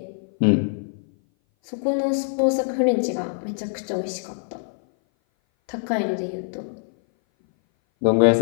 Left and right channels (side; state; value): right; silent; 58 dB below the other